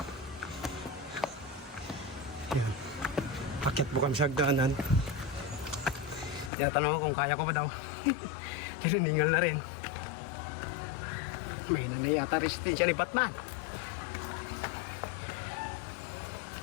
Ayan. Akyat po kami sa hagdanan. Tinatanong ako kung kaya ko ba daw. Tininingal na rin. May nanay ata resistensya ni Batman.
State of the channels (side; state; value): right; drops out; at 6.5 s